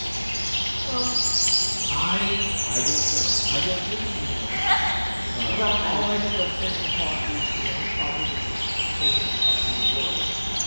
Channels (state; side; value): inverted; both; correlation -1.00